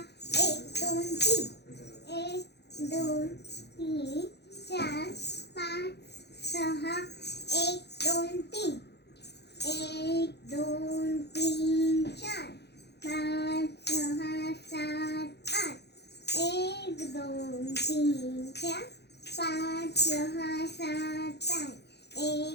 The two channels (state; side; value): late; right; 0.48 ms